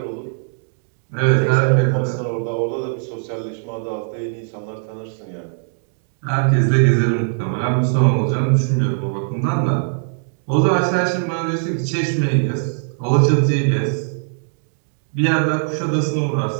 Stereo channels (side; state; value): left; silent; digital silence